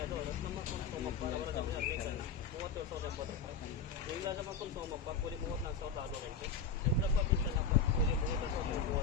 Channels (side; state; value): right; quieter; 5.5 dB